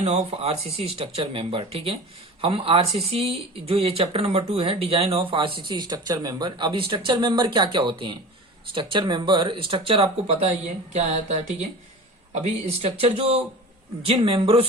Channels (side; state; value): both; normal; correlation 0.36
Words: of RCC structure member. ठीक है, हम आरसीसी जो ये चैप्टर नंबर 2 है, design of RCC structure member. अब स्ट्रक्चर मेंबर क्या क्या होते हैं? स्ट्रक्चर मेंबर, स्ट्रक्चर आपको पता ही है क्या आता है। ठीक है, अभी स्ट्रक्चर जो जिन मेंबरों